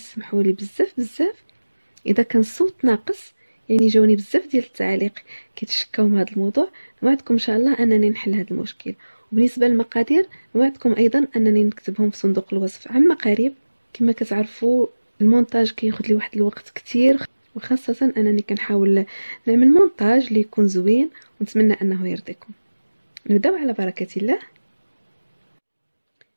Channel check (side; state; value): both; inverted; correlation -1.00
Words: لي بزاف بزاف اذا كان الصوت ناقص، يعني جاوني بزاف ديال التعاليق كيتشكاو من هذا الموضوع. نوعدكم ان شاء الله انني نحل هذا المشكل. وبالنسبه للمقادير نوعدكم ايضا انني نكتبهم في صندوق الوصف عما قريب. كما كتعرفوا المونتاج كياخذ لي واحد الوقت كتير، وخاصه انني كنحاول نعمل مونتاج اللي يكون زوين، ونتمنى انه يرضيكم. نبداو على بركه الله.